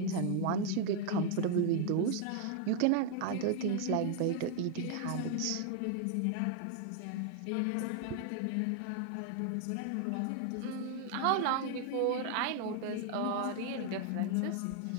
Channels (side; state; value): both; different; correlation 0.00